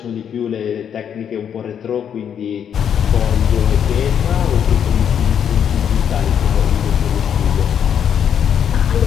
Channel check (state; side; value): quieter; right; 8.5 dB